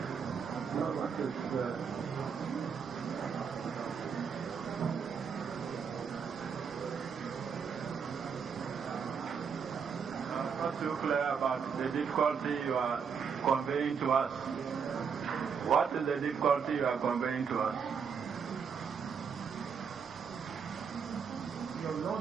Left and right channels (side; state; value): left; quieter; 6.4 dB